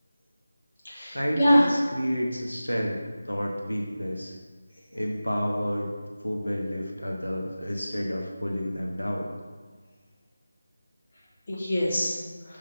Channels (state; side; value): inverted; both; correlation -0.96